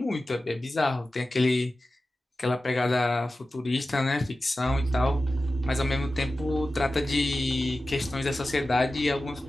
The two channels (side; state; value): both; normal; correlation 0.94